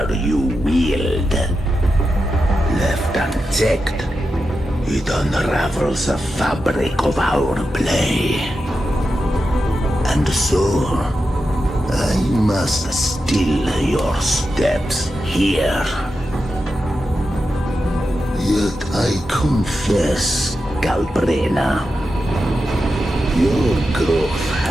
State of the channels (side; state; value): both; normal; correlation 0.89